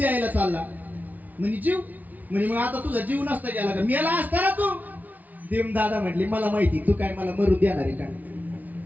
चालला म्हणे जीव म्हणे मग आता तुझा जीव नसता गेला का मेला असता ना तू भीमदादा म्हटले मला माहिती तू काय मला मरू देणार आहे का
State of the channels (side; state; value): left; late; 0.077 ms